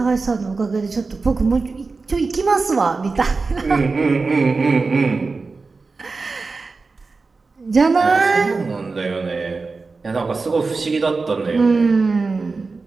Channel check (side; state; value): left; quieter; 4.1 dB